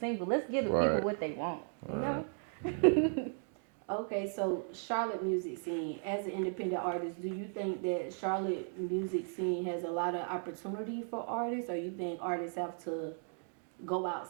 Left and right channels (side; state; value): left; silent; 54 dB below the other